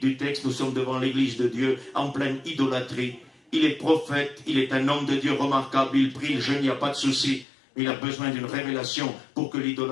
texte, nous sommes devant l'église de Dieu en pleine idolâtrie. Il est prophète, il est un homme de Dieu remarquable, il prie, il jeûne, il n'y a pas de souci. Mais il a besoin d'une révélation pour que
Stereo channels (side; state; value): right; drops out; at 7.5 s